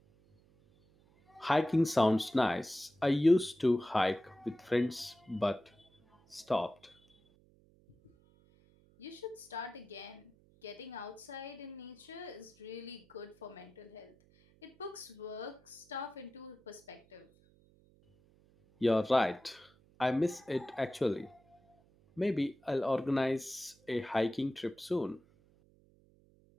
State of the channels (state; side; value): noise; right; hum, 30 dB below the sound